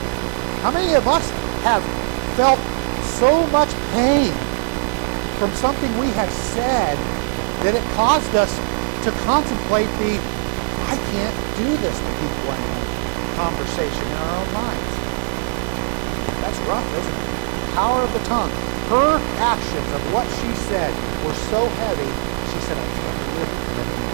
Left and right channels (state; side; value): silent; left; 65 dB below the other